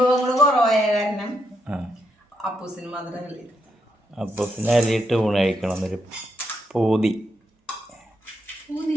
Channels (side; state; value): both; normal; correlation 0.80